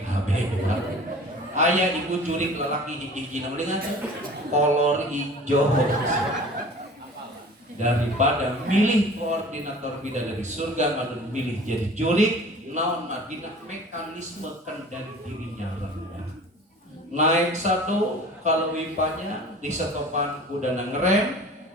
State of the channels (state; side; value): normal; both; correlation 0.43